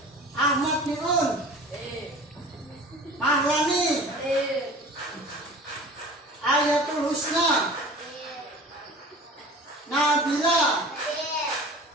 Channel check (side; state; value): both; normal; correlation 0.41